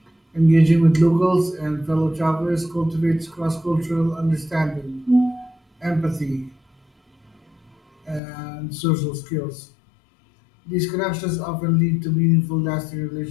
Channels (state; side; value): drops out; right; at 8.2 s